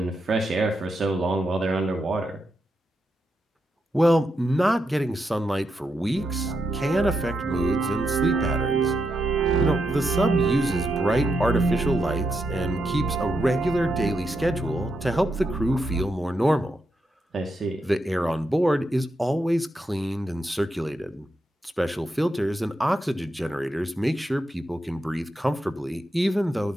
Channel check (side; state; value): both; normal; correlation 0.84